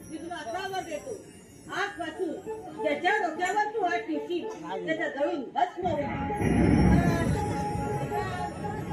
मी तुला असा वर देतो. आजपासून ज्याच्या डोक्यावर तू हात ठेवशील, त्याचा जळून भस्म होईल.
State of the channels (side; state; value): both; identical; correlation 1.00